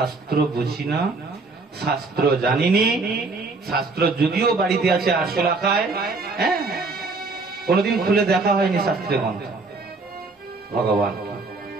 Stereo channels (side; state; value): left; quieter; 3.8 dB